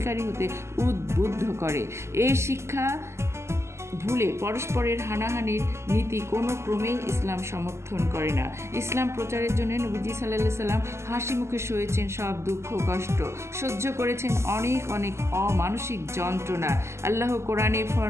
হতে উদ্বুদ্ধ করে। এই শিক্ষা ভুলে পরস্পরের হানাহানির নীতি কোনো ক্রমেই ইসলাম সমর্থন করে না। ইসলাম প্রচারের জন্য নবীজি সাল্লাল্লাহু আলাইহি সাল্লাম হাসি মুখে সয়েছেন সব দুঃখ কষ্ট, সহ্য করেছেন অনেক অমানসিক যন্ত্রণা। আল্লাহ কোরআনে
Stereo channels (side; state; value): left; late; 0.13 ms